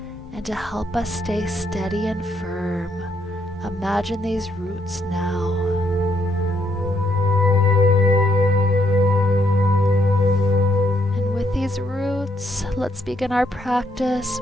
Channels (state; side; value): normal; both; correlation 0.74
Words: and to help us stay steady and firm. Imagine these roots now. And with these roots, let's begin our practice.